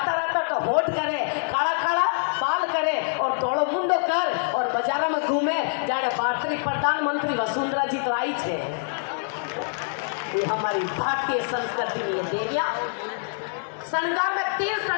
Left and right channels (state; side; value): silent; right; digital silence